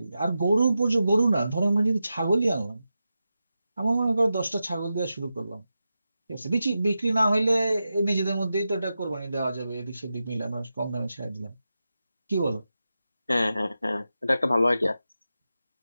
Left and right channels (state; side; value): inverted; both; correlation -0.91